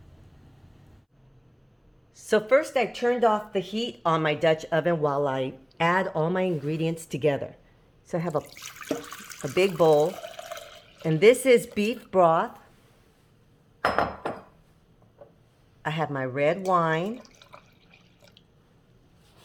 So first I turned off the heat on my Dutch oven while I add all my ingredients together. So I have a big bowl, and this is beef broth. I have my red wine.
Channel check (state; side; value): identical; both; correlation 1.00